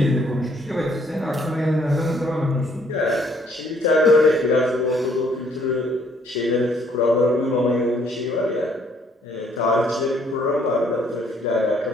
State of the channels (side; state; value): both; normal; correlation 0.65